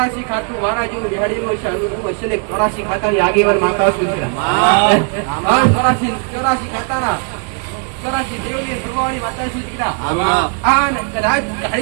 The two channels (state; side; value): quieter; left; 38.8 dB